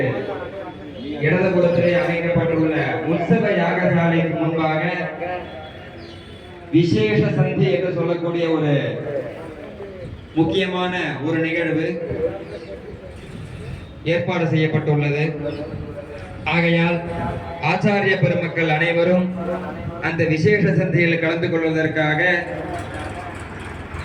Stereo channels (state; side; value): identical; both; correlation 1.00